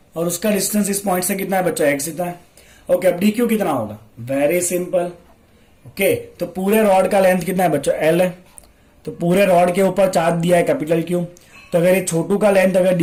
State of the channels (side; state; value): both; identical; correlation 1.00